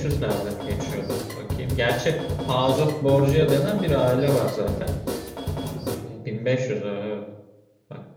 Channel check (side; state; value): both; identical; correlation 1.00